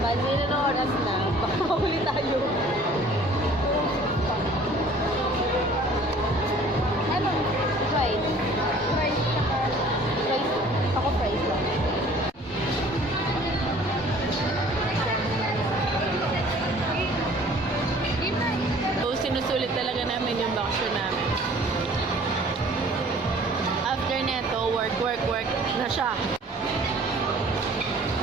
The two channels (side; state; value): both; normal; correlation 0.52